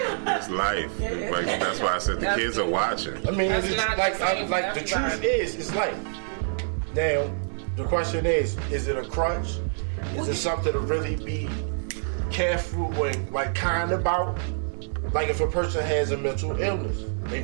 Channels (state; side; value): silent; left; 61 dB below the other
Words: life. Like, that's why I said the That's kids are it. watching. I mean, That's it's just not like the same like for the truth everybody. is, it's life. Now, the question is it a crutch? Is it something to really be careful and like kind about? Like if a person has a mental illness, they